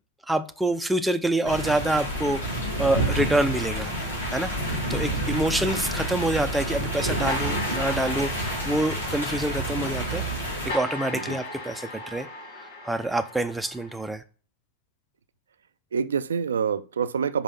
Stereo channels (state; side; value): normal; both; correlation 0.44